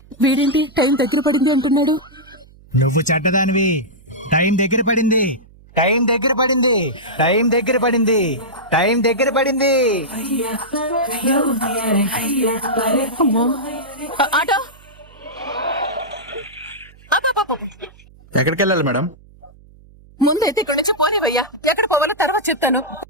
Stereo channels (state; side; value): noise; right; hum, 25 dB below the sound